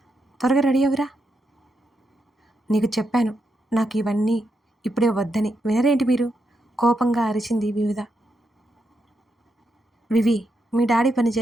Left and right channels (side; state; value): both; normal; correlation 0.83